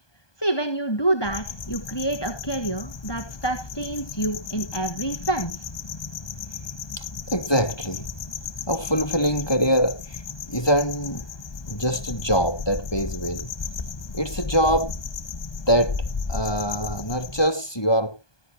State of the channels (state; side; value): late; right; 1.2 ms